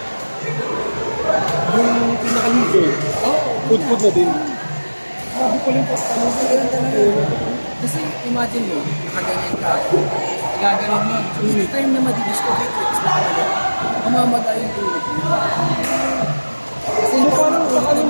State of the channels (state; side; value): inverted; both; correlation -1.00